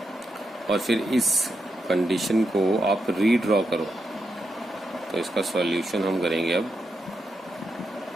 और फिर इस कंडीशन को आप रीड्रॉ करो। तो इसका सॉल्यूशन हम करेंगे अब।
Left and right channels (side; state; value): both; normal; correlation 0.84